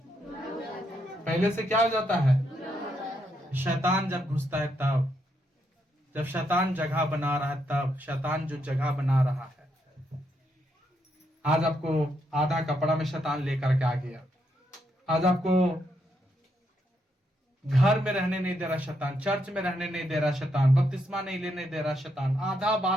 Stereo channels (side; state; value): both; normal; correlation 0.78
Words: पहले से क्या हो जाता है? शैतान जब घुसता है तब, जब शैतान जगह बना रहा है तब, शैतान जो जगह बना रहा है। आज आपको आधा कपड़ा में शैतान लेकर के आ गया। आज आपको घर में रहने नहीं दे रहा शैतान, चर्च में रहने नहीं दे रहा शैतान, बपतिस्मा नहीं लेने दे रहा शैतान, आधा